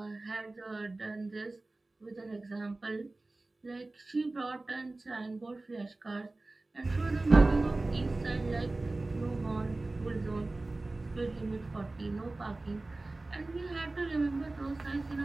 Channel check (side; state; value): left; quieter; 3.1 dB